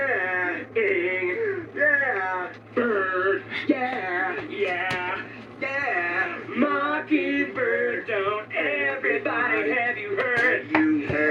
Ing. Yeah. Bird. Yeah. Yeah. Yeah. Mockingbird. Don't everybody have you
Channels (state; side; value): identical; both; correlation 1.00